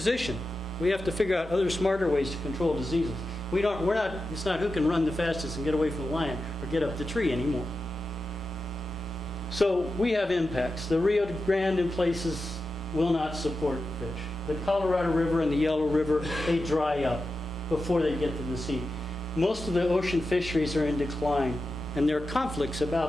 We have to figure out other smarter ways to control diseases. It's not who can run the fastest and get away from the lion or get up the tree anymore. So we have impacts. The Rio Grande in places will not support fish. The Colorado River and the Yellow River, they dry up before they get to the sea. Most of the ocean fisheries are in decline, and there are conflicts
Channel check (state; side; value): normal; both; correlation 0.91